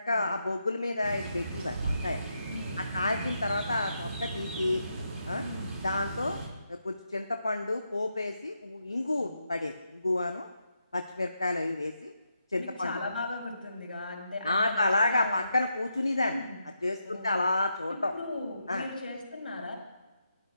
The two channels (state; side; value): inverted; both; correlation -0.82